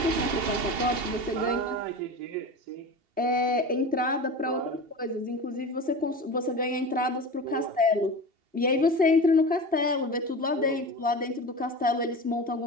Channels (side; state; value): left; late; 2.8 ms